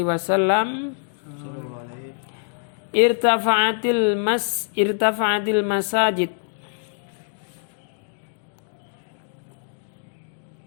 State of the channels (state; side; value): silent; right; digital silence